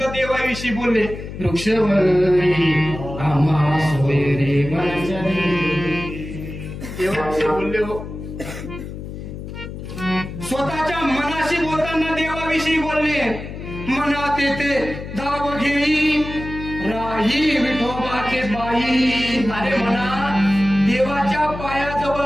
देवाविषयी बोलले. वृक्षवरी आम्हा सोय रे देवाविषयी बोलले. हो स्वतःच्या मनाशी बोलताना देवाविषयी बोलले. मनात येते धाव घेई राही विठोबाचे बाई. अरे म्हणा देवाच्या पायाजवळ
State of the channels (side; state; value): left; noise; hum, 10 dB below the sound